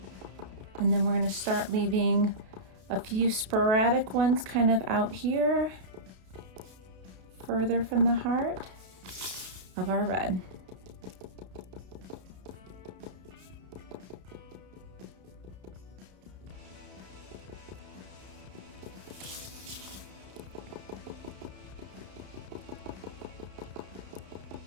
And then we're going to start leaving a few sporadic ones kind of out here, further from the heart of our red.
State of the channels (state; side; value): late; left; 32 ms